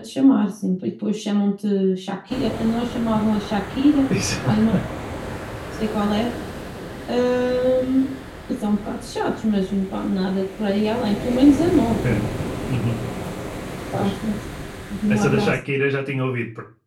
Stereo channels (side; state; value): both; identical; correlation 1.00